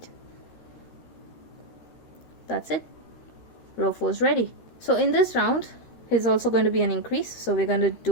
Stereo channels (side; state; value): right; late; 13 ms